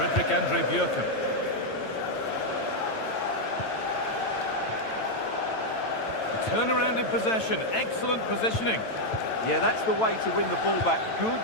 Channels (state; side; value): late; right; 9.0 ms